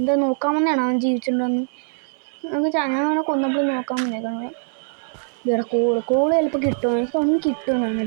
നോക്കാൻ വന്നതാണ് അവൻ ജീവിച്ചിട്ടുണ്ടോന്ന്. ഞാൻ അവനെ കൊന്നപ്പോൾ നോക്കാൻ വന്നേക്കാണ്. ഇവിടെ കോള് ചിലപ്പോൾ കിട്ടുമോ? എനിക്ക് ഒന്നും കിട്ടുമെന്നാണ്.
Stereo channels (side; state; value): left; silent; 64 dB below the other